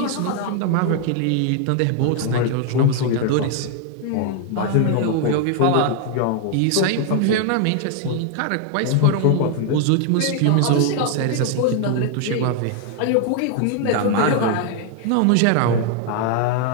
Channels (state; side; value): different; both; correlation 0.00